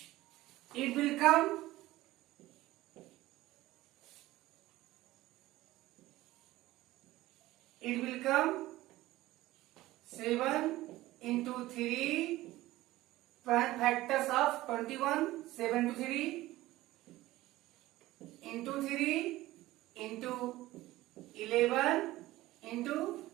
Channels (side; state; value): left; quieter; 17.1 dB